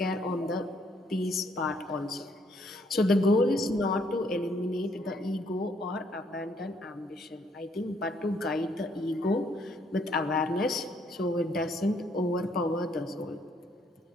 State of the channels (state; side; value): normal; both; correlation 0.68